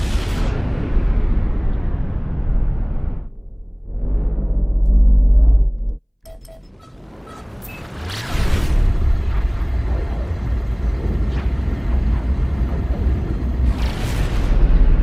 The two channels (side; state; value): both; identical; correlation 1.00